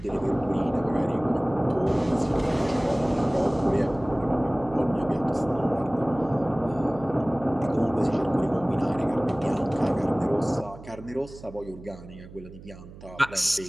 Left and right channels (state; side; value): noise; right; hum, 17 dB below the sound